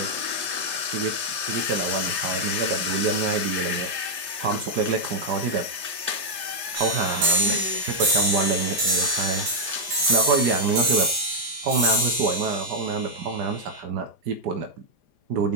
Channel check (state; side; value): late; left; 4.9 ms